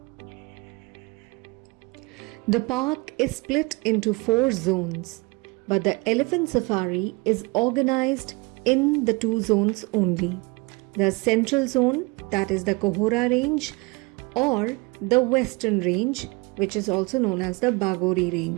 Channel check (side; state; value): left; quieter; 26.6 dB